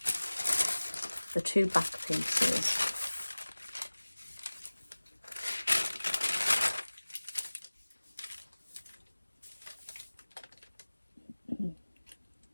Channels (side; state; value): both; inverted; correlation -1.00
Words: the two back pieces.